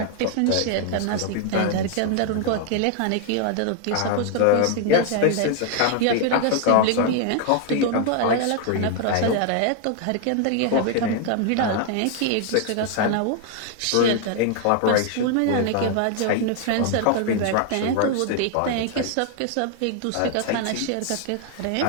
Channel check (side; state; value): both; different; correlation 0.00